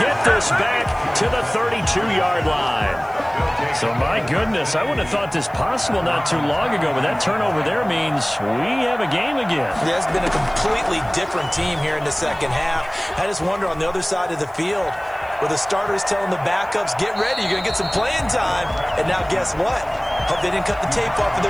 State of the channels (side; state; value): left; noise; hiss, 29 dB below the sound